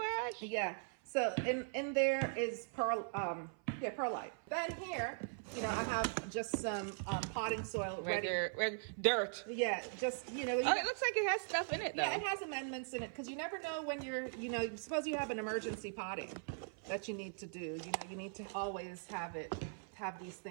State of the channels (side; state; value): left; silent; 51 dB below the other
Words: ash? Yeah. So in there is perlite. Then here, you know, I have just some potting soil regular dirt. Yeah, just, you know. Oh, it looks like it has stuff in it, though. Yeah, it has amendments in it, because you never know when you're, you know, suppose you have an emergency potting that you need to do. You know, you need to always have these